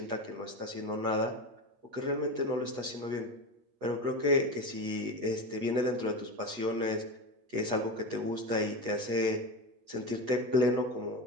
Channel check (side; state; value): left; late; 8.2 ms